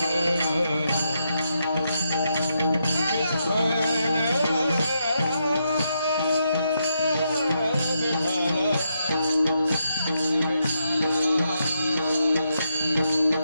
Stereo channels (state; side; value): inverted; both; correlation -0.81